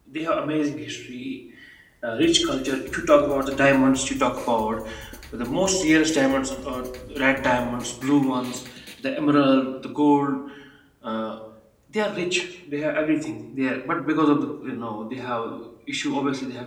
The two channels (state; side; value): identical; both; correlation 1.00